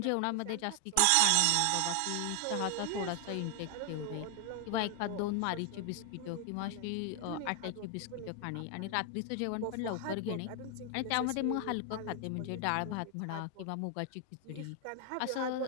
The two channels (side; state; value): both; different; correlation 0.00